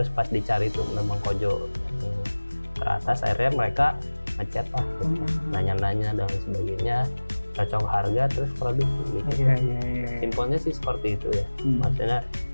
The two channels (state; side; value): inverted; both; correlation -1.00